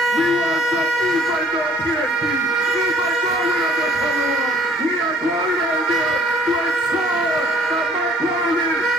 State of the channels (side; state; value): both; normal; correlation 0.57